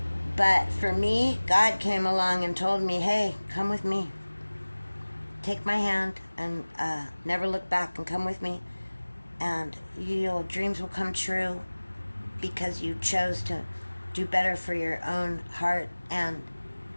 But for me, God came along and told me, hey, come with me. Take my hand and never look back, and come with me. And your dreams will come true because you chose to do better for your own heart and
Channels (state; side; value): inverted; both; correlation -1.00